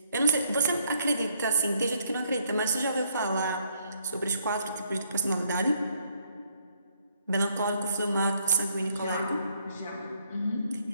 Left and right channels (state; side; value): inverted; both; correlation -0.70